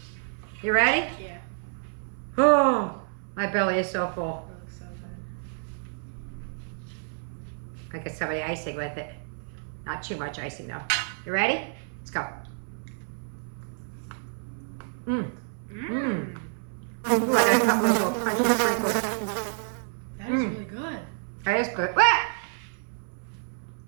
You ready? Yeah. Oh, my belly is so full. That looks so good. I get some of the icing with it. Not too much icing though. You ready? Let's go. Mmm. Mmm. Ooh, I got a couple of little crunchy sprinkles. That is really good. That is good. Wah!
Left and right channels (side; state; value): left; silent; 59 dB below the other